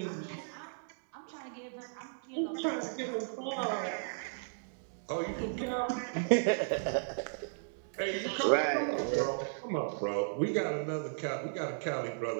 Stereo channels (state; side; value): silent; left; digital silence